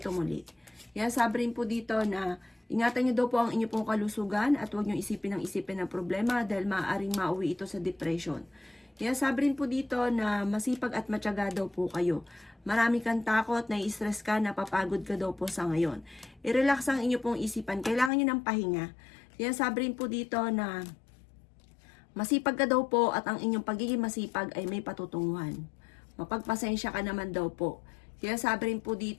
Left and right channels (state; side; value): drops out; right; at 18.1 s